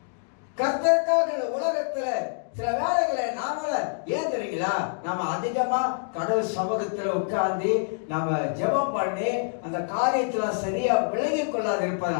கர்த்தருக்காக உலகத்துல சில வேலைகளை நாமள ஏன் தெரியுங்களா, நம்ம அதிகமா கடவுள் சமூகத்துல உட்கார்ந்து நம்ம ஜெபம் பண்ணி அந்த காரியத்துல சரியா விளங்கி கொள்ளாது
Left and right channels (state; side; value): silent; right; digital silence